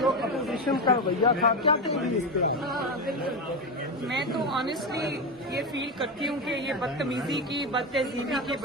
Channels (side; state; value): both; normal; correlation 0.15